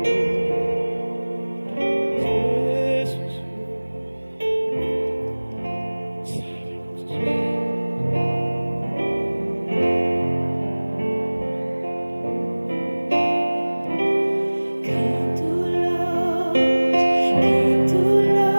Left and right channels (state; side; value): inverted; both; correlation -1.00